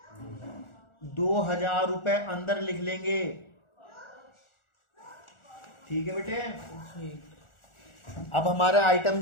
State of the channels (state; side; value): late; right; 1.4 ms